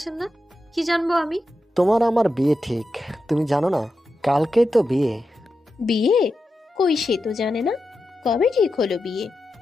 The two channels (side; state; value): both; normal; correlation 0.89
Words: না? কি জানবো আমি? তোমার আমার বিয়ে ঠিক, তুমি জানো না? কালকেই তো বিয়ে। বিয়ে? কই, সে তো জানে না। কবে ঠিক হলো বিয়ে?